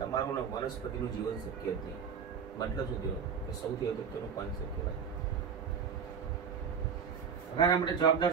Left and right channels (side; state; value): left; quieter; 6.7 dB